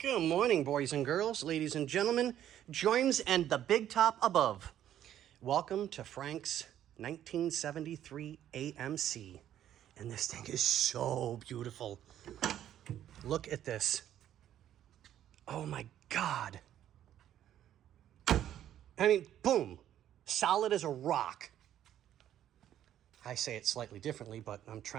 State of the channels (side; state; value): left; quieter; 11.2 dB